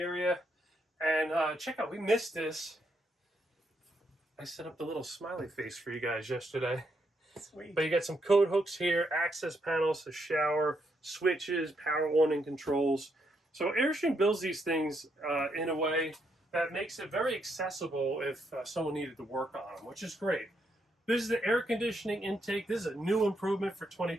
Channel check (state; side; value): normal; both; correlation 0.77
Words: and check out, we missed this. I set up the little smiley face for you guys yesterday. Sweet. But you got some code hooks here, access panels, a shower, switches, power warning controls. So Airstream builds these things in a way that makes it very accessible if someone needed to work on them, which is great. This is the air conditioning intake. This is a new improvement for